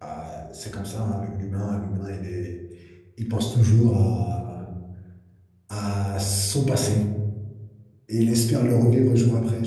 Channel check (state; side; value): identical; both; correlation 1.00